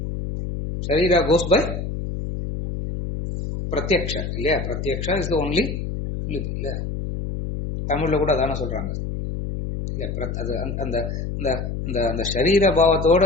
Sharira goes by pratyaksha. இல்லையா? pratyaksha is the only இல்லையா? தமிழ்ல கூட அதான சொல்றாங்க. அந்த ஷரீர பாவத்தோட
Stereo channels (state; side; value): noise; left; hum, 4 dB below the sound